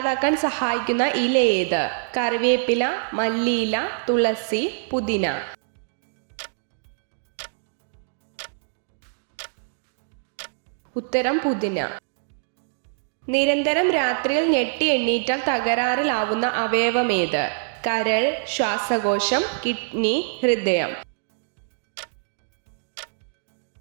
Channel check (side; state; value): left; silent; digital silence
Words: സഹായിക്കുന്ന ഇല ഏത്? കറിവേപ്പില, മല്ലിയില, തുളസി, പുതിന. ഉത്തരം പുതിന. നിരന്തരം രാത്രിയിൽ ഞെട്ടി എണ്ണീറ്റാൽ തകരാറിലാവുന്ന അവയവമേത്? കരൾ, ശ്വാസകോശം, കിഡ്നി, ഹൃദയം.